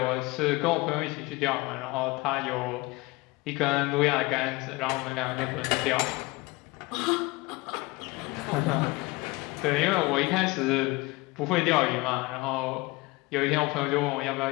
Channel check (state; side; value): quieter; right; 23.2 dB